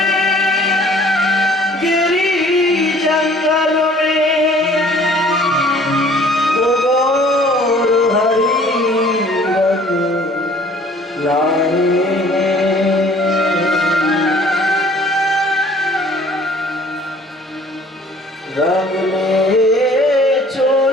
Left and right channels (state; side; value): normal; both; correlation 0.53